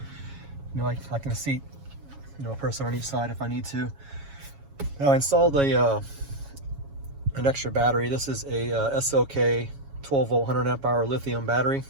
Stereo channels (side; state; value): left; late; 7.2 ms